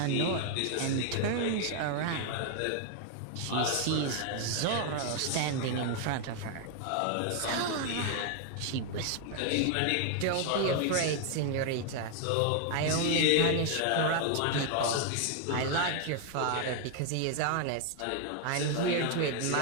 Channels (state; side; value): different; both; correlation 0.00